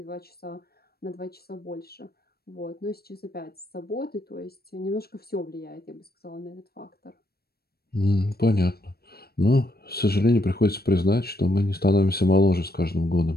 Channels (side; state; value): right; late; 0.45 ms